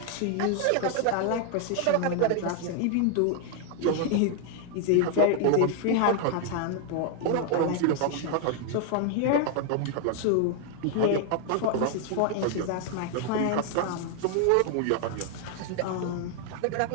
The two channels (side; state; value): both; different; correlation 0.00